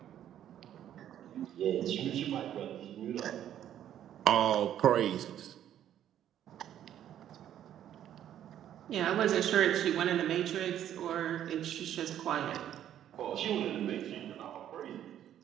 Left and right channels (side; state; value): left; quieter; 10.9 dB